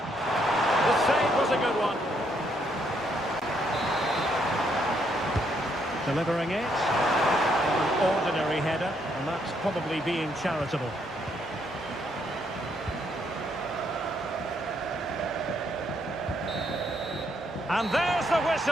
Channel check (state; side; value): normal; both; correlation 0.73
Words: save was a good one. Delivering it. An ordinary header, and that's probably being charitable. And there's the